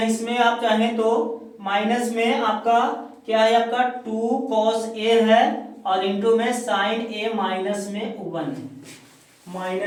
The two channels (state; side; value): identical; both; correlation 1.00